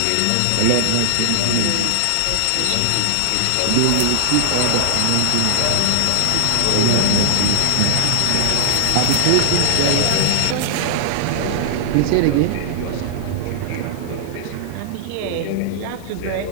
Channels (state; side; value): different; both; correlation -0.01